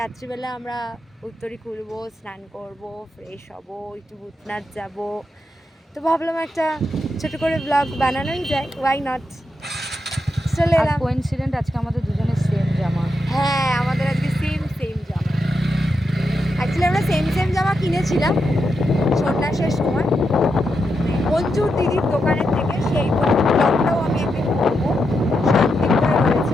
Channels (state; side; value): normal; both; correlation 0.85